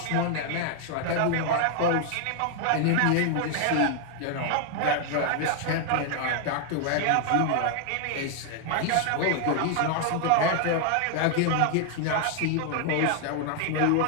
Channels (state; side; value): different; both; correlation 0.00